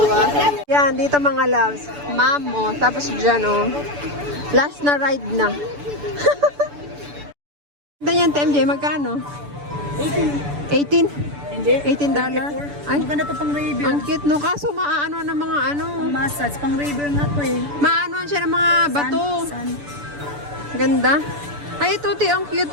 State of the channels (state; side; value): late; left; 6.9 ms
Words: Yan, dito mga loves. Mammoth. Tapos dyan, oh. Last na ride na. Ganyan, TMJ, magkano? 18? Hindi. $18? Ay, Maganda to pang review. ang cute, no? Kaso maaano ng mga ano. Massage. Pang review nga to eh. Maanoan siya ng mga bato. Sun. Ganda. Ay, ito, ang cute,